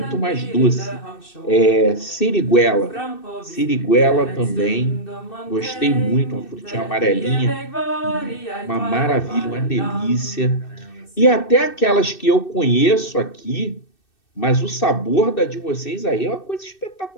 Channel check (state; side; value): late; right; 2.6 ms